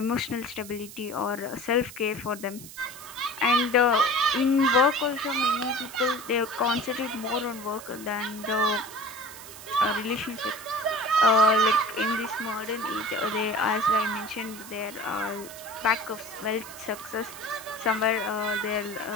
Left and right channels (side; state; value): right; noise; hiss, 15 dB below the sound